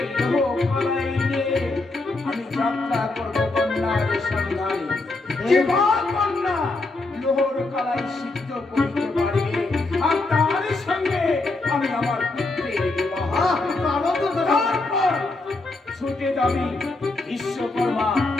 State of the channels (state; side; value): quieter; right; 3.2 dB